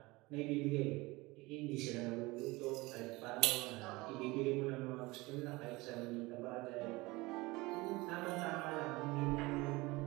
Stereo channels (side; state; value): left; quieter; 22.2 dB